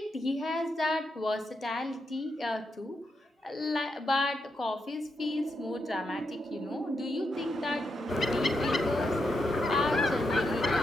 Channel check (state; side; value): normal; both; correlation 0.83